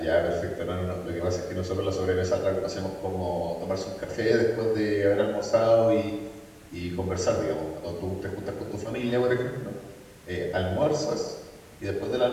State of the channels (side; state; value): both; identical; correlation 1.00